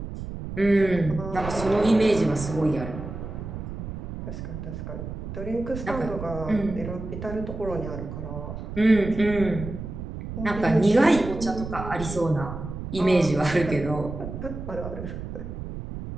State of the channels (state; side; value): noise; right; rumble, 8 dB below the sound